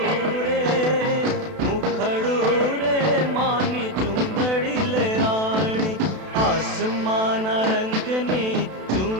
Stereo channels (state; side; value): late; left; 32 ms